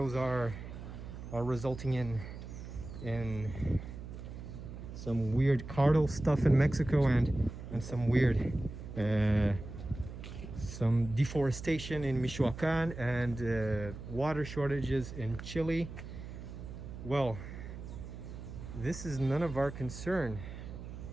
are resulting in some weird cartel stuff in Mexico and some weird some deforestation in Michoacan and water shortages in Chile. Well, this is none of our concern,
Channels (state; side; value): noise; right; hum, 11 dB below the sound